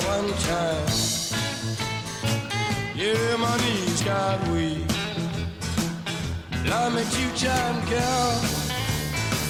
1 time, yeah, my knees got weak. Love me 2 times, girl.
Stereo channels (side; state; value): both; identical; correlation 1.00